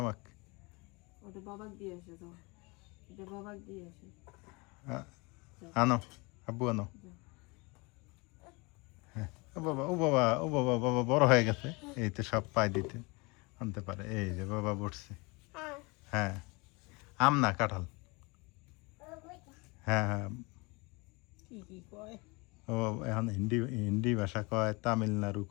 আমাকে। ওটা বাবাক দিয়ে আসে তো, এটা বাবাক দিয়ে আসে। আনো, আব্বু আনো। ও বাবা, ও বাবা, ও বাবা, বাবা বড় হয়ে গেছে, এই তো সব পাই দিতে আনতে পারে। এই যে বাবা বসছে। হ্যাঁ, আম না কাঁঠাল। হ্যাঁ হ্যাঁ, কি কি কয় ও এখন হিন্দি হিন্দি ভাষা কয়, তামিলনাড়ু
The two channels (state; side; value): quieter; right; 27.1 dB